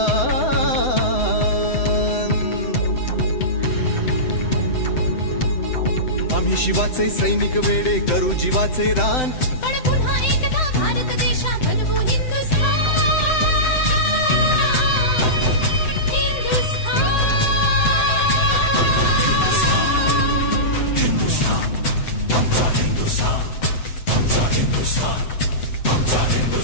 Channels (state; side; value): late; right; 7.9 ms